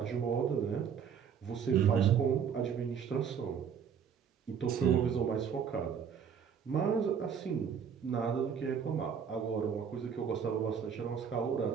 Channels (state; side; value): quieter; left; 7.4 dB